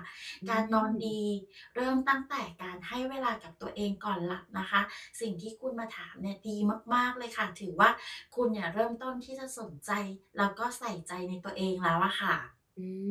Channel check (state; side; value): identical; both; correlation 1.00